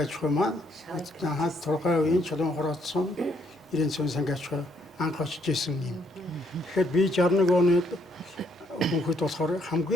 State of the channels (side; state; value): both; normal; correlation 0.70